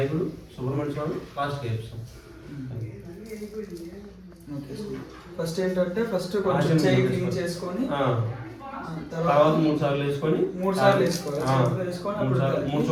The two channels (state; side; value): identical; both; correlation 1.00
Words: సుబ్రహ్మణ్య స్వామి, లాస్ట్ చేస్తాం. ఫస్ట్ ఏంటంటే కొంచెం చేయి క్లీన్ చేసుకొని తర్వాత 3 సార్లు వేసుకొని 3 సార్లు వేసుకోవాలి. 3